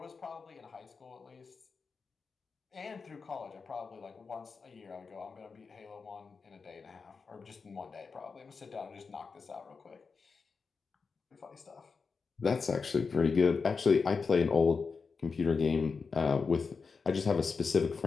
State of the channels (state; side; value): quieter; right; 4.9 dB